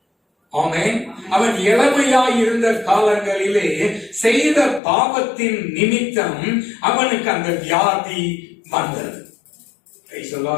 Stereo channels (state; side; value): drops out; right; at 4.8 s